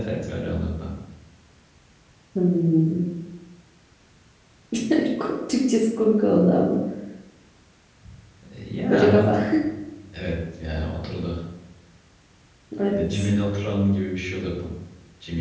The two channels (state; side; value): identical; both; correlation 1.00